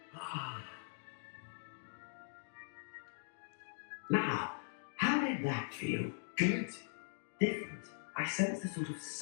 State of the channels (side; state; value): right; silent; digital silence